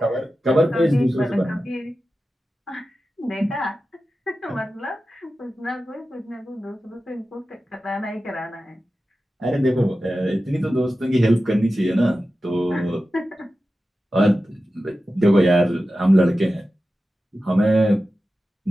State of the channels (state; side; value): normal; both; correlation 0.93